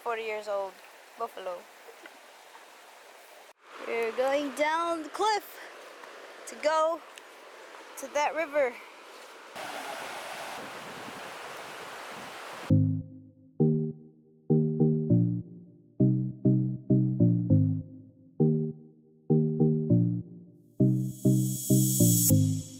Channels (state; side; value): identical; both; correlation 1.00